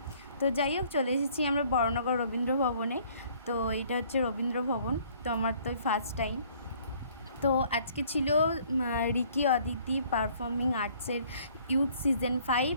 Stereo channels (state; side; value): inverted; both; correlation -0.59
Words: তো যাই হোক, চলে এসেছি আমরা বড়নগর রবীন্দ্র ভবনে। তো এটা হচ্ছে রবীন্দ্র ভবন। তো আমার তো ফার্স্ট টাইম। তো আজকে ছিল রিকি অদিতি পারফর্মিং আর্টসের ইউথ সিজন